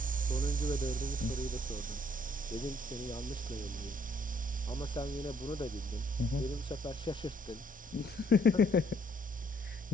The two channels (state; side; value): normal; both; correlation 0.66